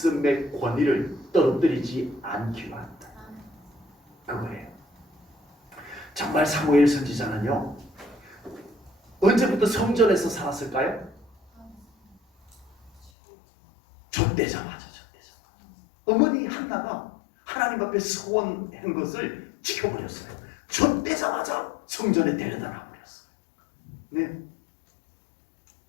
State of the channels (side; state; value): right; drops out; at 13.1 s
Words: 권위를 떨어뜨리지 않기로 한다. 그거예요. 정말 사무엘 선지자는요, 언제부터 성전에서 살았을까요? 젖대자마자. 어머니 한나가 하나님 앞에 서원한 것을 지켜버렸어요. 젖대자마자 성전에 데려다 놔버렸어요. 네.